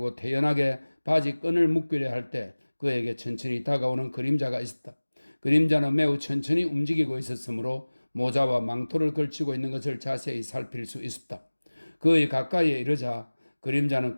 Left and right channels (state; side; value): inverted; both; correlation -1.00